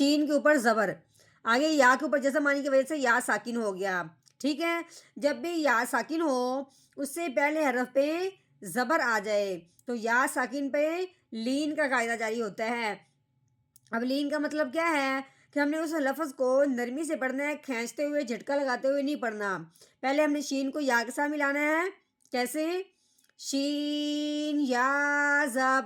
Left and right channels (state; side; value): identical; both; correlation 1.00